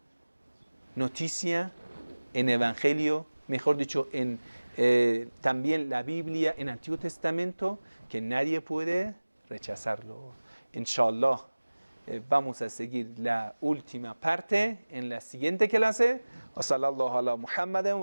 noticia en Evangelio, mejor dicho, en también la Biblia, en Antiguo Testamento, que nadie puede rechazarlo. Inshallah, vamos a seguir la última parte en la siguiente clase. Wa sallallahu ala Muhammadin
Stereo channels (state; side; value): inverted; both; correlation -1.00